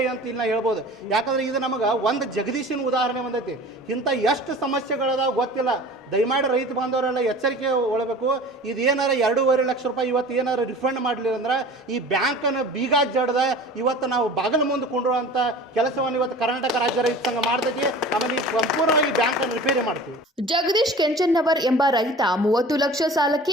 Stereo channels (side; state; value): both; normal; correlation 0.40